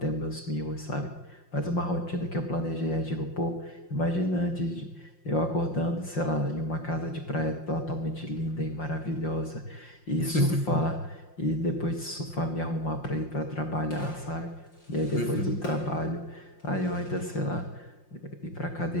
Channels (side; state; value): right; late; 5.7 ms